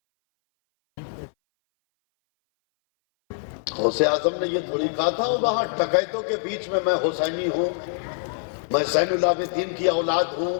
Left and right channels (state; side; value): silent; right; 59 dB below the other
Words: غوث اعظم نے یہ تھوڑی کہا تھا وہاں ڈکیتوں کے بیچ میں حسینی ہوں، میں زین العابدین کی اولاد ہوں،